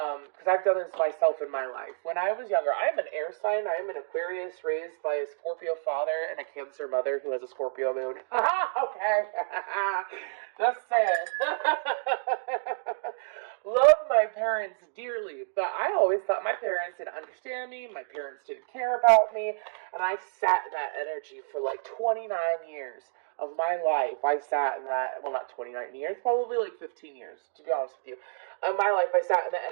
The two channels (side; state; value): left; silent; digital silence